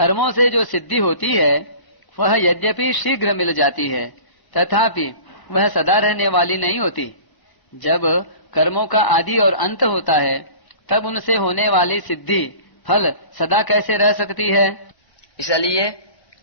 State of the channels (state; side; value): late; right; 1.2 ms